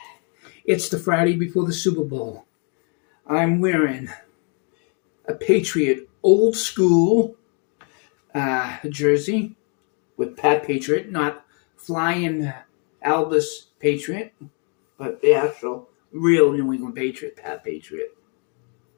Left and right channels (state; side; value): quieter; right; 38.4 dB